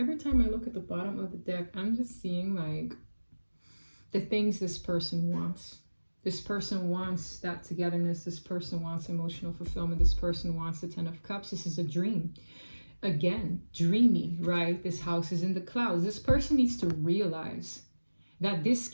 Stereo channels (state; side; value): inverted; both; correlation -1.00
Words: time I look at the bottom of the deck, I'm just seeing like the things this person wants. This person wants that togetherness. This person wants emotional fulfillment. This person wants the 10 of Cups. This is a dream. again, dreamy, right? This house is in the clouds. This person needs to realize that this